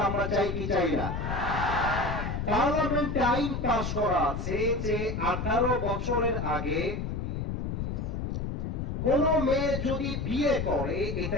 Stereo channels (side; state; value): left; noise; rumble, 3 dB below the sound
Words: আমরা চাই কি চাই না? পার্লামেন্টে আইন পাস করা আছে যে 18 বছরের আগে কোন মেয়ে যদি বিয়ে করে